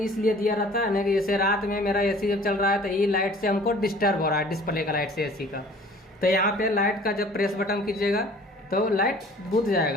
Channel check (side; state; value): both; normal; correlation 0.50